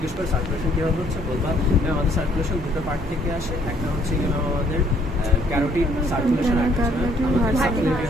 করে সার্কুলেশন কীভাবে হচ্ছে বলবা ম্যাম আমাদের সার্কুলেশন দুটো পার্ট থেকে আসে, একটা হচ্ছে কি ম্যাম আমাদের ক্যারোটিড সার্কুলেশন, একটা হচ্ছে আমাদের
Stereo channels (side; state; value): both; normal; correlation 0.64